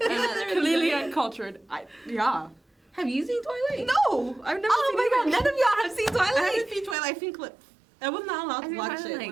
They're am clearly uncultured. Yeah. Have you seen Twilight? No, I've never Oh seen my god, it. none of y'all have seen Twilight? I haven't seen Twilight. I've seen clips. I was not allowed I've to seen watch Twilight, it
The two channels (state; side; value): drops out; left; at 7.0 s